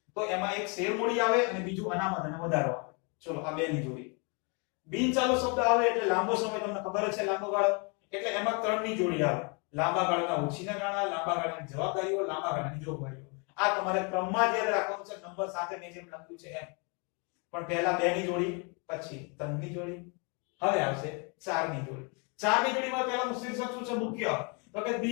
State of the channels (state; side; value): quieter; right; 34.0 dB